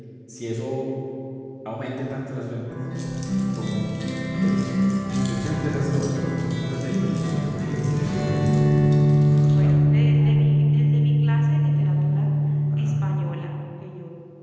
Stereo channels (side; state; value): both; identical; correlation 1.00